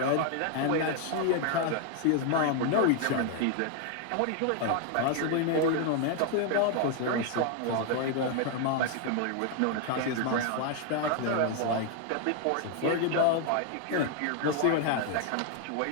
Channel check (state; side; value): different; both; correlation 0.00